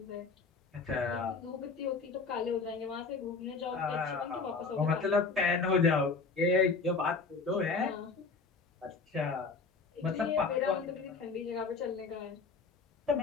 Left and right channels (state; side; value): quieter; right; 4.5 dB